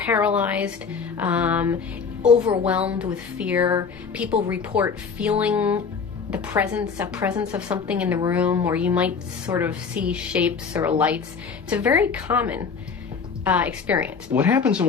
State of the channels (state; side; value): quieter; right; 5.7 dB